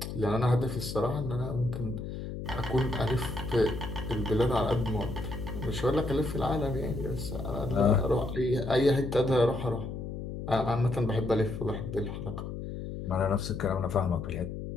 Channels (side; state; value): left; noise; hum, 7 dB below the sound